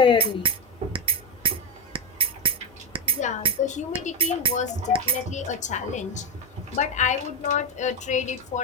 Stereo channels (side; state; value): both; normal; correlation 0.13